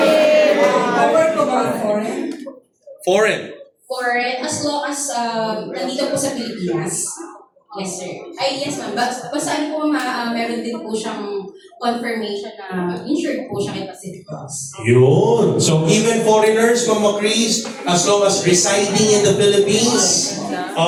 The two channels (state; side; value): identical; both; correlation 1.00